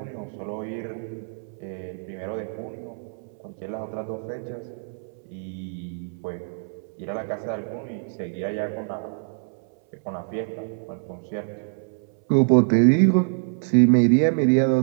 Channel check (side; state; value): left; silent; 61 dB below the other